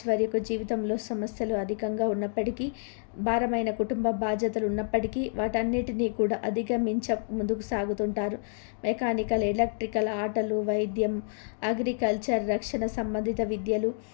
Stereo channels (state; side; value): silent; right; digital silence